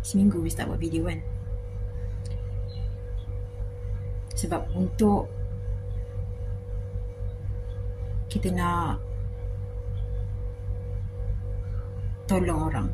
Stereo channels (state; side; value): identical; both; correlation 1.00